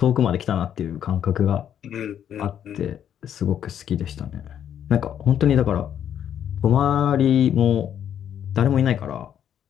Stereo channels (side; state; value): right; quieter; 9.6 dB